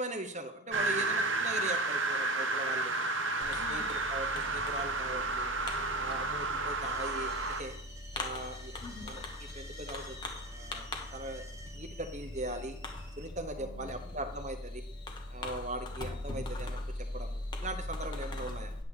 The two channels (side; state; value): both; normal; correlation 0.31